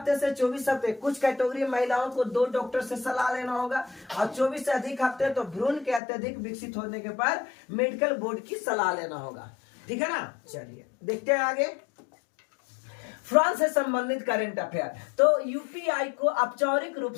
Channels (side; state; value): right; drops out; at 6.0 s